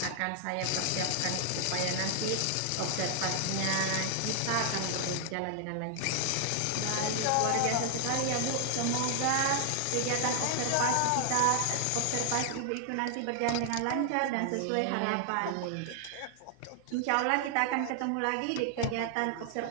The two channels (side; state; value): both; different; correlation 0.00